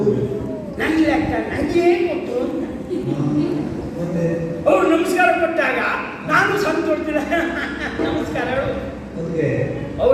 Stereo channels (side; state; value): both; identical; correlation 1.00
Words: ನನ್ನ ಲೆಕ್ಕ ನನಗೆ ಕೊಟ್ಟು ಅಂತ ಅವ್ರು ನಮಸ್ಕಾರ ಕೊಟ್ಟಾಗ ನಾನು ಸಂತೋಷದಿಲ್ಲ ನಮಸ್ಕಾರ ಹೇಳು.